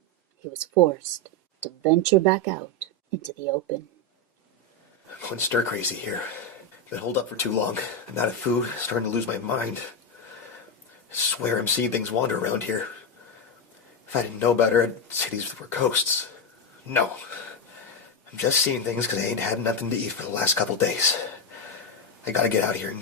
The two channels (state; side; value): normal; both; correlation 0.08